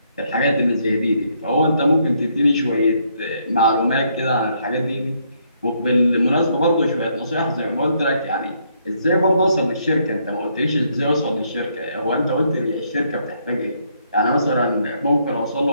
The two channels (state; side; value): inverted; both; correlation -0.72